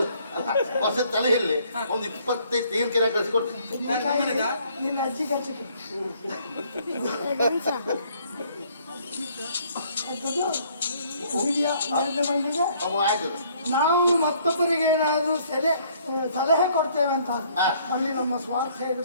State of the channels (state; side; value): inverted; both; correlation -0.63